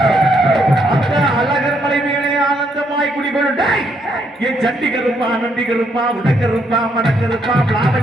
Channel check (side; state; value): both; normal; correlation 0.74